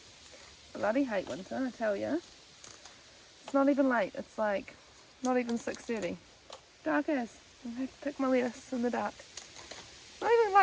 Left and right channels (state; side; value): identical; both; correlation 1.00